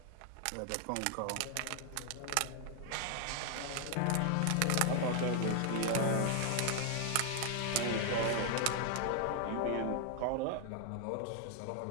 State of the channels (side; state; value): both; different; correlation 0.00